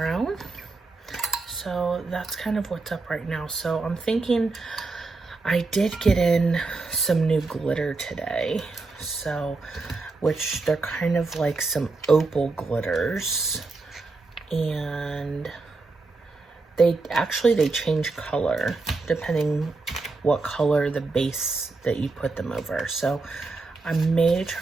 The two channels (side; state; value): left; quieter; 3.7 dB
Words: So that's kind of what's up right now. So I'm thinking, I did get in some new glitter today, so, which they're kind of like some opal glitters, and they change color depending what color the base that you put them over. So I may